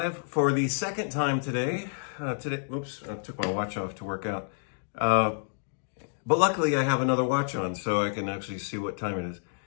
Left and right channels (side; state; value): right; silent; digital silence